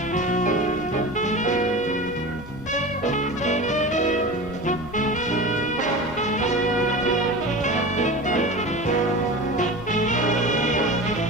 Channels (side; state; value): both; normal; correlation 0.31